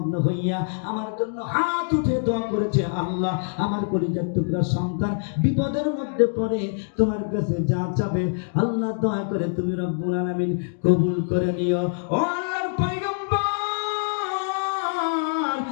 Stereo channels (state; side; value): silent; right; digital silence